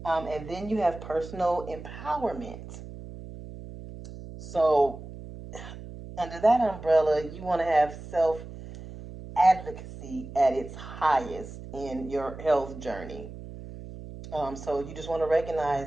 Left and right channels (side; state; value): right; noise; hum, 13 dB below the sound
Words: And then you have personal empowerment. So, under that umbrella, you want to have self advocacy at its highest in your health journey. So, you just want to recognize